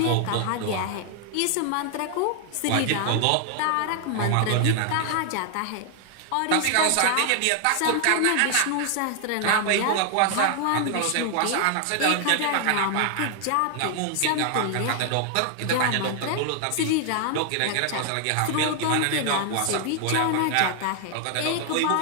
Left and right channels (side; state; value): both; different; correlation 0.00